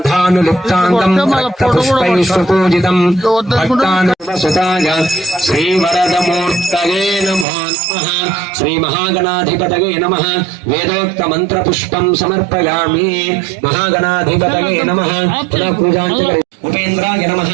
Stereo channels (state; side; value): drops out; left; at 7.5 s